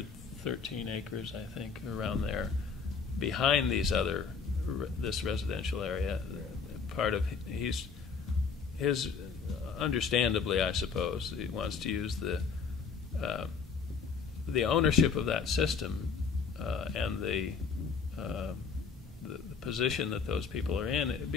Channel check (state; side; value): quieter; right; 5.6 dB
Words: acres, I think, around there, behind this residential area, part of his understandably, I suppose, he wants to use the ownership of that system and the position that those people are in. It